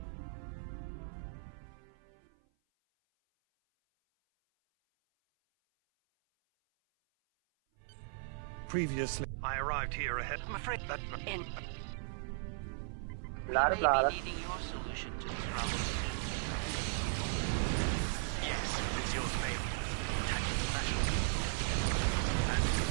Previously, I arrived here ahead. I'm afraid that... Blah, blah, needing your solution to this problem. Yes, it's yours, mate. Tactical special. And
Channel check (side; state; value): left; silent; 53 dB below the other